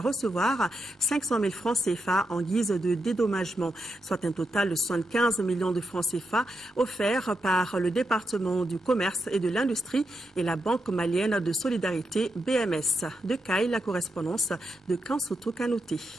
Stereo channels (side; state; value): both; normal; correlation 0.84